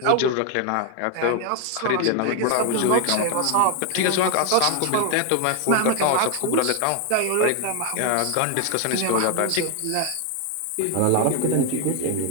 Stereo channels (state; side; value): different; both; correlation 0.01